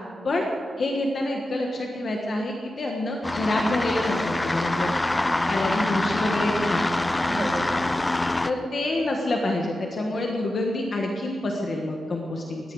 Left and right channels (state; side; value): normal; both; correlation 0.91